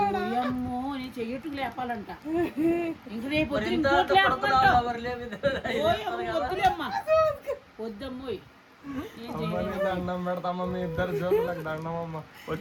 అమ్మో నేను చెయ్యట్టు లేపాలంట. ఇంక రేపు వద్దమ్మోయ్. దండం పెడతామా మీ ఇద్దరు జోకులకు దండమమ్మ.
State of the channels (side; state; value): both; identical; correlation 1.00